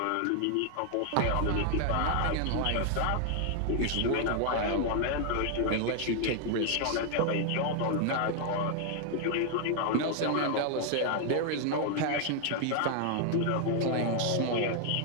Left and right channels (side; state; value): both; different; correlation 0.00